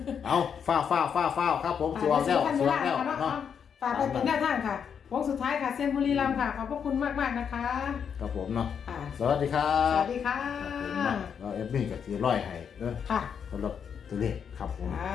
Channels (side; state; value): right; quieter; 7.3 dB